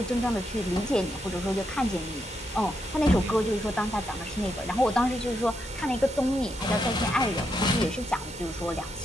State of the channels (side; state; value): both; normal; correlation 0.81